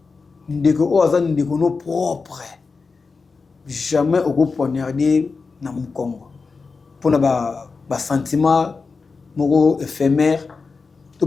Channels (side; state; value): right; quieter; 4.5 dB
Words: ndeko o azani ndeko no propre jamais au poignarder na mukongo pona ba sentiment moko éphémère tout